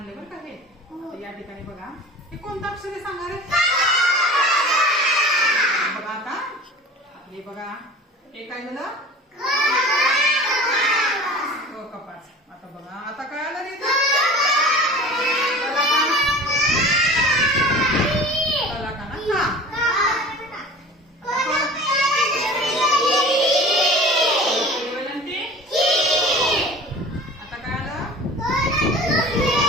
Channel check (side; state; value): both; normal; correlation 0.40